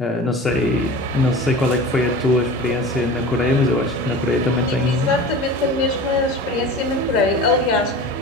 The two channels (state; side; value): normal; both; correlation 0.35